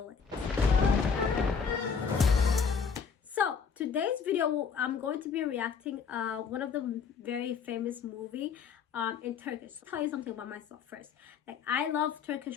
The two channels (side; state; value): right; quieter; 6.1 dB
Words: So today's video, I'm going to be reacting one of the very famous movie in Turkish. I'll tell you something about myself first. Like, I love